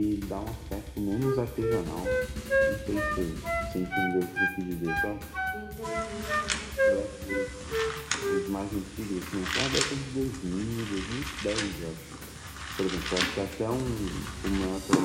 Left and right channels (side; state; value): both; identical; correlation 1.00